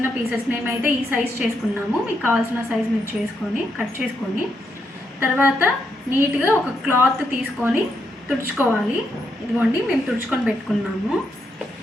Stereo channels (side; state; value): both; normal; correlation 0.80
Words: పీసెస్ మేమైతే ఈ సైజ్ చేసుకున్నాము. మీకు కావాల్సిన సైజ్ మీరు చేసుకొని కట్ చేసుకొని తర్వాత నీట్గా ఒక క్లాత్ తీసుకొని తుడుచుకోవాలి. ఇదిగోండి మేము తుడుచుకొని పెట్టుకున్నాము.